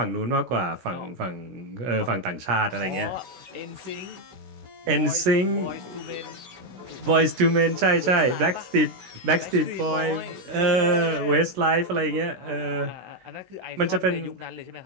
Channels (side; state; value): left; late; 16 ms